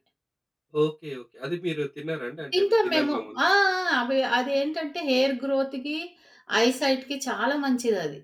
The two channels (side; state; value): both; identical; correlation 1.00